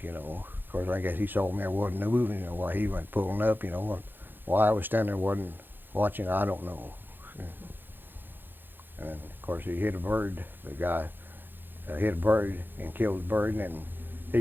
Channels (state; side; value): late; left; 0.096 ms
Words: Of course, I guess he saw me, I wasn't moving, while he went pulling up, and why I was standing there wasn't watching, I don't know. And then, of course, he hit a bird. The guy hit a bird and killed the bird, and then